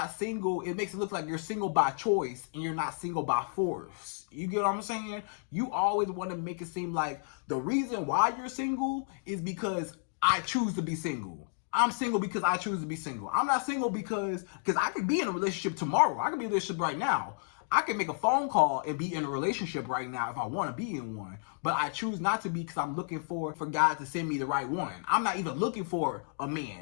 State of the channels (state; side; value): silent; right; digital silence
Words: single. It makes it look like you're single by choice and you're not single by force. You get what I'm saying? You always want to make it seem like the reason why you're single is because I choose to be single. I'm single because I choose to be single. I'm not single because I could be in a relationship tomorrow. I could be in a relationship right now. I can make a phone call and be in a relationship right now if I want to be in one. But I choose not to be because I'm looking for God to send me the right one. I'm not even looking for a